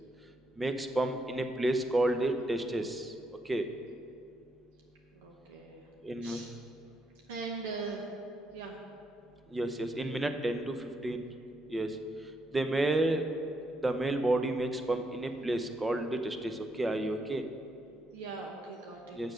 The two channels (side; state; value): both; normal; correlation 0.78